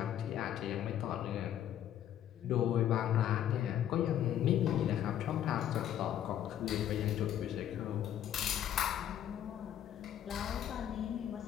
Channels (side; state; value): right; quieter; 10.8 dB